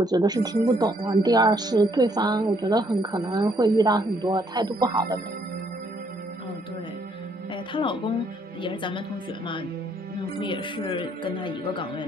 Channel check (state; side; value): normal; both; correlation 0.68